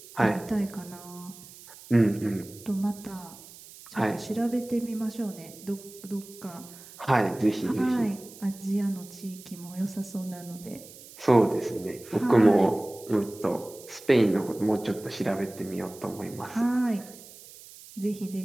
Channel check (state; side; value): noise; right; hiss, 19 dB below the sound